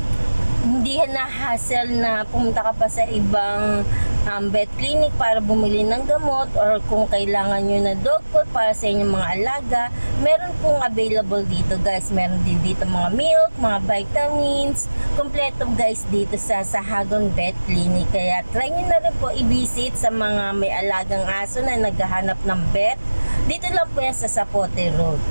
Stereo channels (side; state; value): both; inverted; correlation -1.00